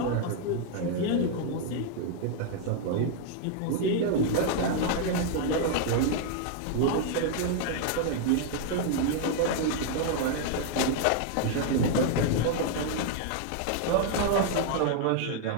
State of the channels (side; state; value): both; different; correlation 0.00